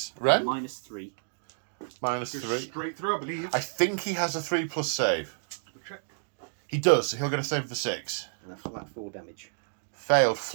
Ren? -3. -3. Straight through, I believe. I think he has a 3+ save. Check. He does, so he'll get a save of the 6. And a flat 4 damage. Failed.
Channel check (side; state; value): left; silent; digital silence